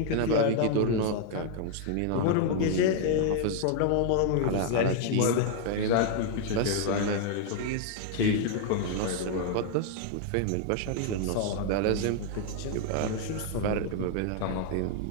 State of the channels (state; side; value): different; both; correlation 0.00